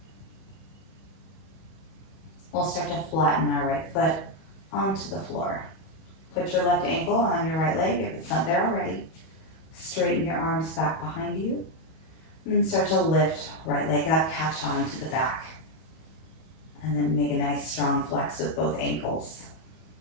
We'll start to flatten our right foot onto the floor. Put your left ankle on your right leg if it's not there already. Straighten your arms back behind you. And then start to lift right leg up, catch on to the back. And then make a nice strong flex with both ankles.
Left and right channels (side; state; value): right; late; 31 ms